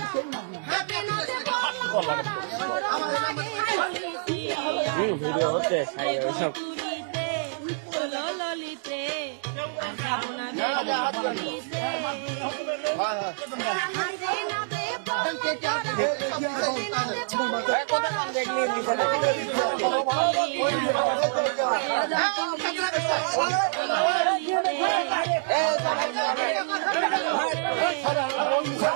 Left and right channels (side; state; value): left; silent; digital silence